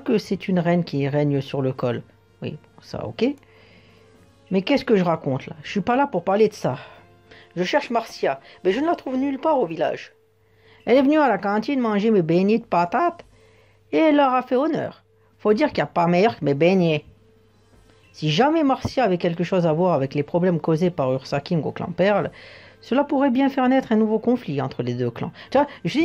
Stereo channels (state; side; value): identical; both; correlation 1.00